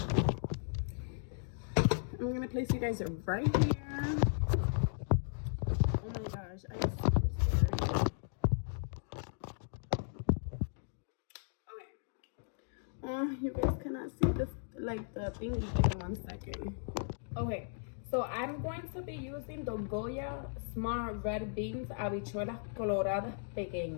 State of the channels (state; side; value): silent; right; digital silence